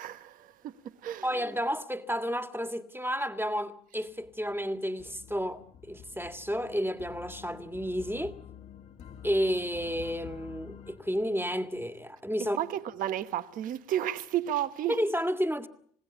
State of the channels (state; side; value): normal; both; correlation 0.73